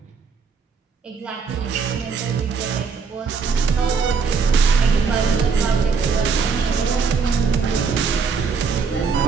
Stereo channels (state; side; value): quieter; left; 5.3 dB